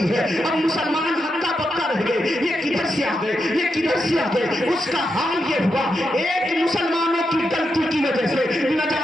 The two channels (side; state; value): both; normal; correlation 0.85